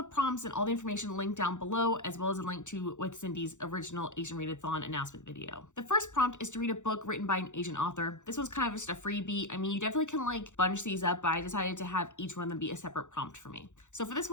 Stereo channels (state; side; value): late; right; 0.85 ms